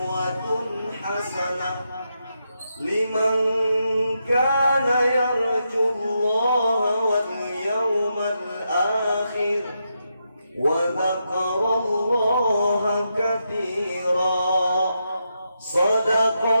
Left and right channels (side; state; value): both; inverted; correlation -0.84